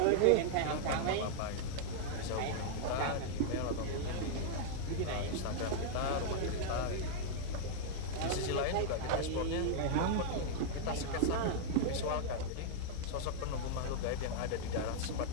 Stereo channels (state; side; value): different; both; correlation -0.01